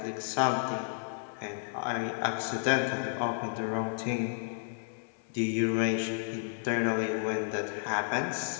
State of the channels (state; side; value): silent; right; 56 dB below the other